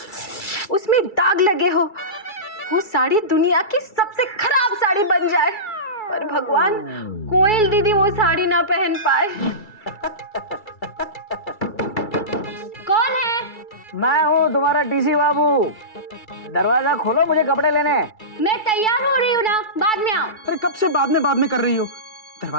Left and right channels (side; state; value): right; late; 2.3 ms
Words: उसमें दाग लगे हो, वो साड़ी दुनिया की सबसे खराब साड़ी बन जाए, पर भगवान कोयल दीदी वो साड़ी ना पहन पाए। कौन है? मैं हूँ तुम्हारा टीसी बाबू। दरवाजा खोलो, मुझे कपड़े लेने हैं। मैं तैयार हो रही हूँ ना, बाद में आओ। अरे कब से बाद में कर रही हो?